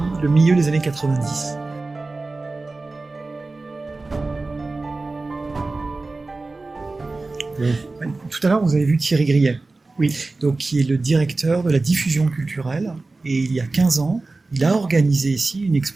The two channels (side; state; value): left; quieter; 3.4 dB